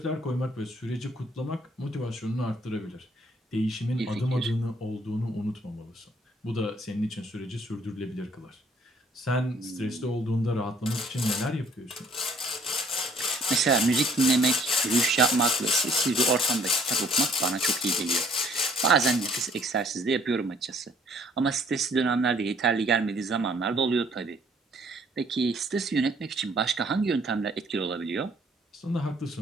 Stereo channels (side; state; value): both; normal; correlation 0.61